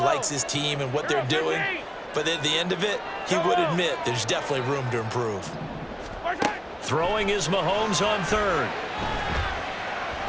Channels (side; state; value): both; identical; correlation 1.00